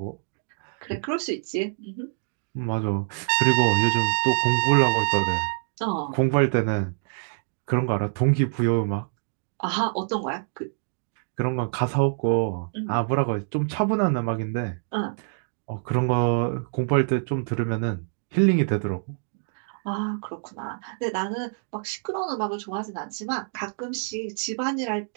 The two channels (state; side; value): silent; left; digital silence